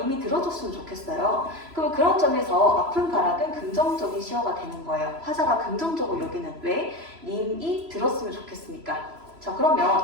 들어줬으면 좋겠어요. 그런 점에서 아픈 가락은 긍정적인 시어가 되는 거예요. 화자가 긍정적으로 여기는 왜? 님이 들었으면 좋겠습니까? 자,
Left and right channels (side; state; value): left; late; 3.0 ms